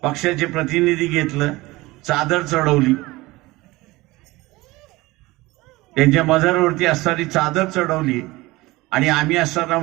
पक्षाचे प्रतिनिधी घेतलं, चादर चढवली. त्यांच्या मजारवरती असणारी चादर चढवली आणि आम्ही असताना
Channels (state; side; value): quieter; left; 20.5 dB